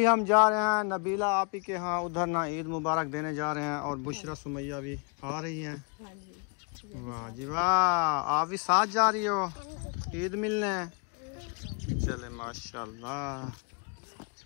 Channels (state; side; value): quieter; right; 34.3 dB